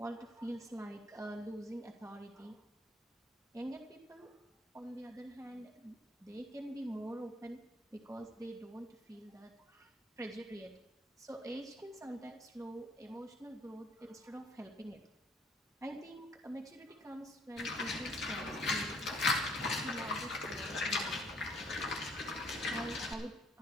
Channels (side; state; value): both; normal; correlation 0.63